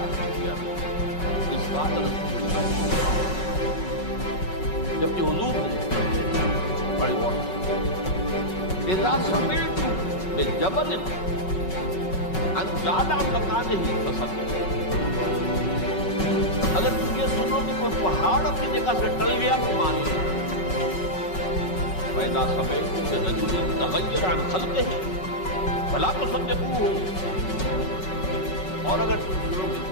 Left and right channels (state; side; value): late; right; 5.4 ms